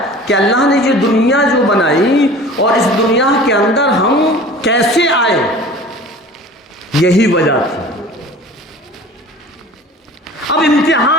کہ اللہ نے یہ دنیا جو بنائی اور اس دنیا کے اندر ہم کیسے آئے، یہی وجہ تھی. اب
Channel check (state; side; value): normal; both; correlation 0.42